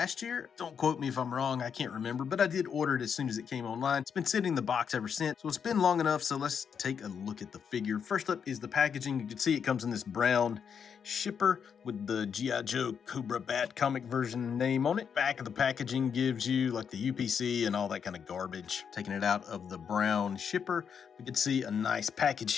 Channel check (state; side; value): quieter; right; 7.1 dB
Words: year. Don't quote me if I'm wrong, I can't remember, but I did order it as soon as it came online. It's been sitting in the box ever since, so it's been long enough, so let's take a look at the figure. First up is the packaging. You can see it comes in this brown shipper with the G.I. Joe Cobra Bat comic version name on it. Back of the packaging gives you like the UPC and all that kind of garbage. Taking it out of the brown shipper, we can see a nice package